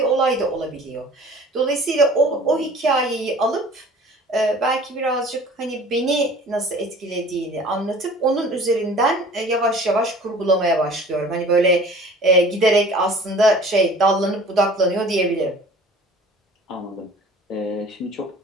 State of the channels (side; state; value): both; normal; correlation 0.46